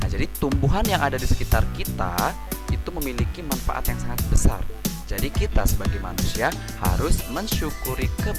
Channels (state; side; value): identical; both; correlation 1.00